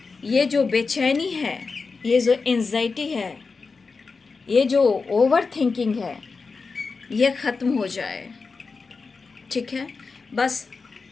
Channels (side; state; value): right; quieter; 4.5 dB